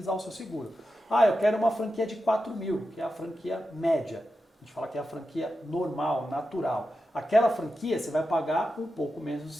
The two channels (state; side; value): normal; both; correlation 0.90